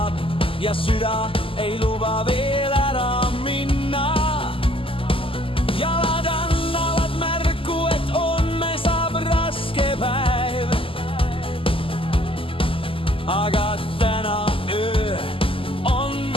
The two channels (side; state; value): right; late; 0.26 ms